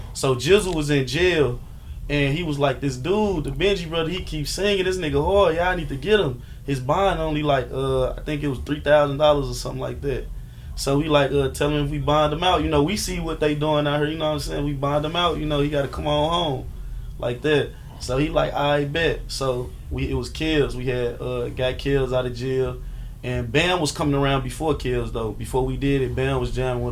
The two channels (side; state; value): both; identical; correlation 1.00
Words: So Jizzle was in jail, and he was like, this dude, the Benji brother, he keeps singing, this nigga hard, y'all need to get him. His bond only like, I think it was $3,000 or something like that. So we like, tell him if we bond him out, you know, we see what they doing out here, you know what I'm saying? We bond him out, you know, he got to come on home like that. So he like, I bet. So it was Kills. We had got Kills out of jail. And Bam was coming around before Kills though. Before we did it, Bam was jamming